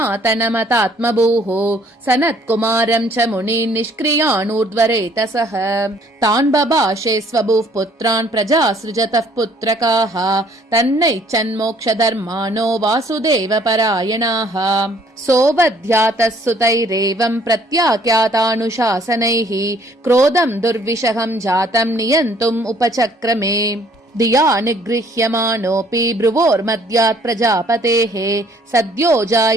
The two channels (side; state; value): both; normal; correlation 0.60